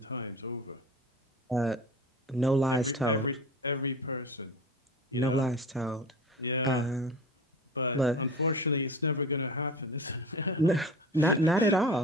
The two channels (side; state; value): both; normal; correlation 0.34